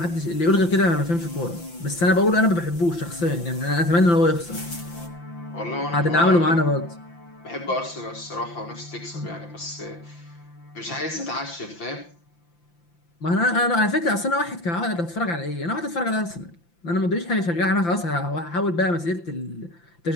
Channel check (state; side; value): late; right; 5.8 ms